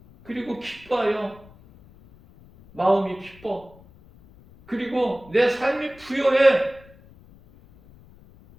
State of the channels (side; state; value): left; noise; rumble, 24 dB below the sound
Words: 그리고 기뻐요. 마음이 기뻐. 그리고 내 삶이 부여해.